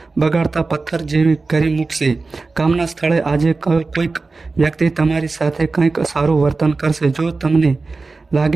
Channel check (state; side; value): quieter; left; 3.8 dB